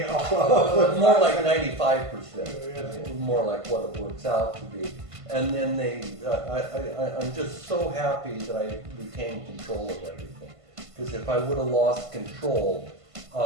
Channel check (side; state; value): left; late; 1.5 ms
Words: more like 95%. More like what it works out to be. And then I'm just so happy that I retained control of everything. Because if I would have lost control,